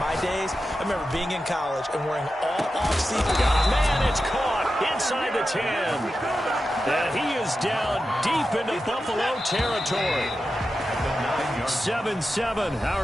days, I remember being in college and wearing all off-season. Man, it's caught inside the 10. And he is down deep into Buffalo territory. 7-7,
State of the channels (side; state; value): both; normal; correlation 0.91